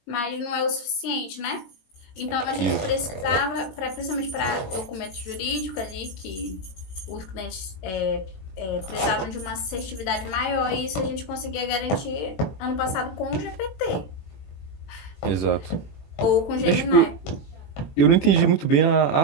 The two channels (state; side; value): late; right; 21 ms